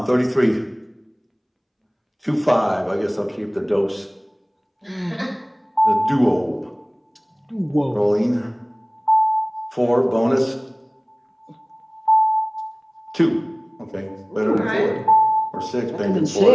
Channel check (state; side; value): identical; both; correlation 1.00